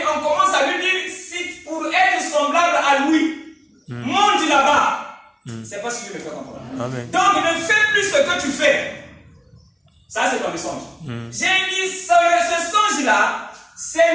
on commence à lui dire, si pour être semblable à lui, monte là-bas. C'est pas ce que je me fais comprendre. Amen. Donc, ne fais plus ce que tu fais. Ça, c'est dans le songe. J'ai dit, ce songe-là,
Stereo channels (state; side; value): identical; both; correlation 1.00